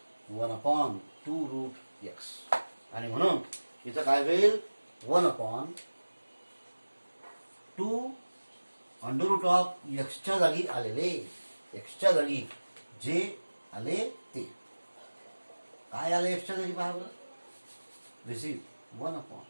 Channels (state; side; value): inverted; both; correlation -1.00